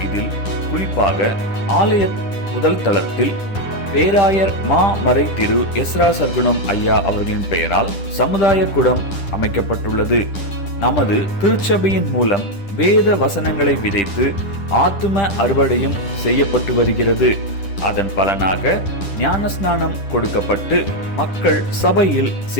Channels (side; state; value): right; late; 10 ms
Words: இதில் குறிப்பாக ஆலய முதல் தளத்தில் பேராயர் மா மறை திரு எஸ்ரா சர்க்குணம் ஐயா அவர்களின் பெயரால் சமுதாய கூடம் அமைக்கப்பட்டுள்ளது. நமது திருச்சபையின் மூலம் வேத வசனங்களை விதைத்து ஆத்தும அறுவடையும் செய்யப்பட்டு வருகிறது. அதன் பலனாக ஞானஸ்நானம் கொடுக்கப்பட்டு மக்கள் சபையில்